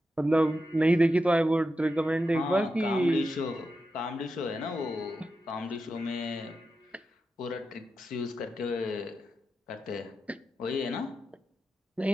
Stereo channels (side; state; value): both; normal; correlation 0.89